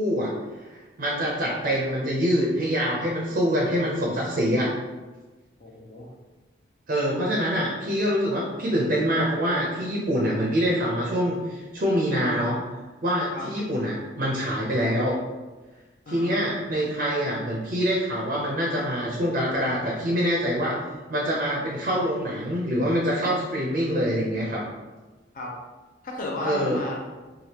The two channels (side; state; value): both; normal; correlation 0.49